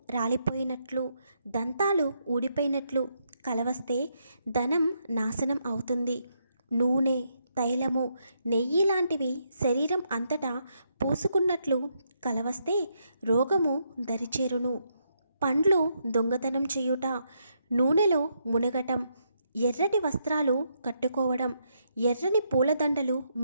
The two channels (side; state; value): both; inverted; correlation -0.78